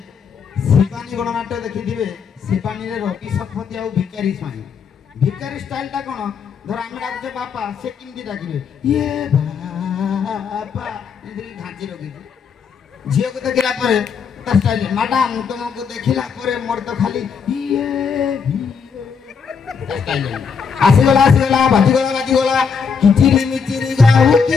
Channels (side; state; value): right; quieter; 6.1 dB